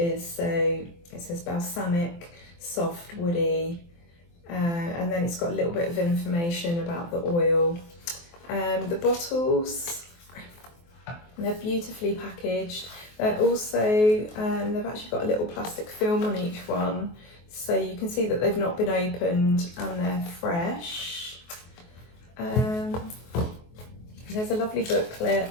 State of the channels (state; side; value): late; right; 23 ms